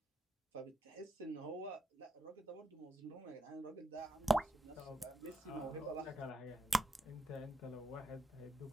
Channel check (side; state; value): both; normal; correlation 0.83